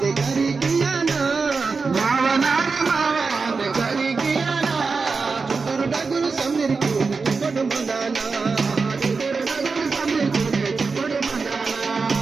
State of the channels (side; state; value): left; quieter; 4.6 dB